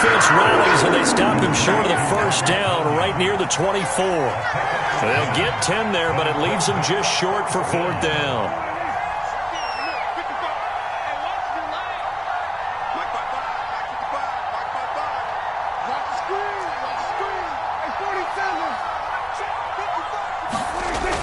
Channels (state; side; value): identical; both; correlation 1.00